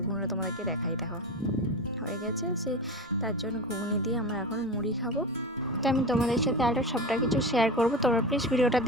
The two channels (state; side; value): normal; both; correlation 0.25